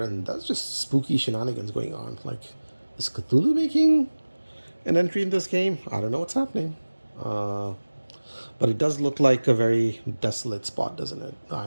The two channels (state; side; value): inverted; both; correlation -1.00